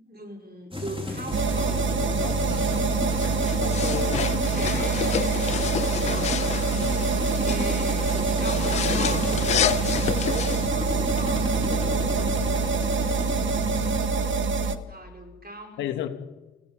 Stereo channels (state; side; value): normal; both; correlation 0.26